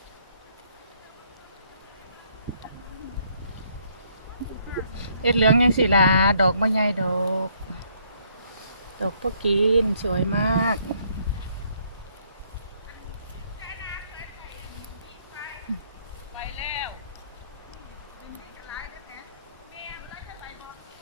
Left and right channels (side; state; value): both; inverted; correlation -0.68